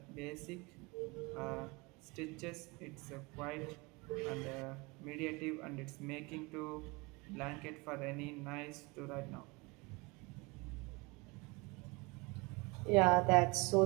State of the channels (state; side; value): quieter; left; 27.0 dB